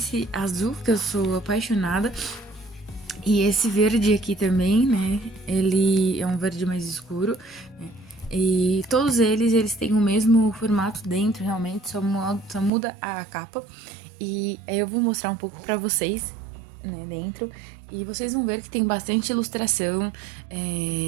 azul que eu sou apaixonada, e esse verde aqui também, né? Ele é um verde mais escuro, né? E todos eles têm o mesmo formato dentro, realmente, só muda a capa. E aí eu vou mostrar um pouco pra vocês, né, dentro. E vocês vão ver que tem bastante ilustração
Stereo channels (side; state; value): left; drops out; at 12.7 s